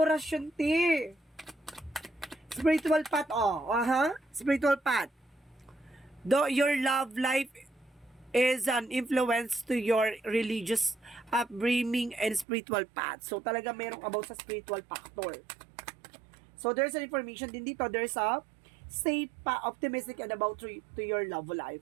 te. Spiritual path, oh. Spiritual path. Though your love life is an influence to your religious upbringing and spiritual path. So, talaga merong about sa spiritual factor. So, there's an information din dito. There's a stay optimistic and about to your love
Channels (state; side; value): drops out; left; at 12.5 s